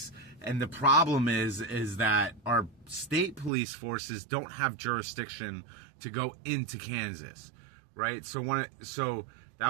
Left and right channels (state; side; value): drops out; left; at 3.5 s